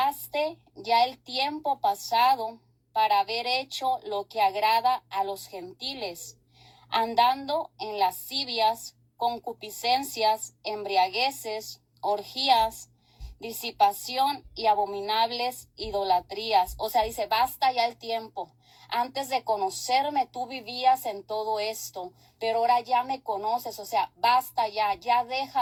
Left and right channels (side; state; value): both; identical; correlation 1.00